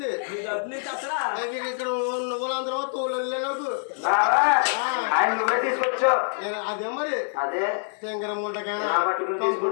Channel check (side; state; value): right; silent; digital silence